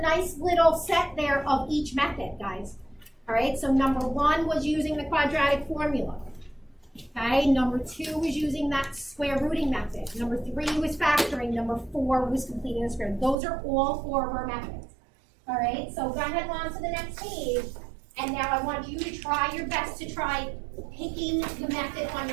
little set there of each method, guys. All right, so number 1 was using the quadratic formula. Okay, number 2 was using that square rooting method. Number 3 was factoring. Number 4 was completing the square. Those are all 4 of our methods. All right, so go ahead on to the next page. And now I want you to try your best to try picking the method on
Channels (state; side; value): drops out; left; at 13.4 s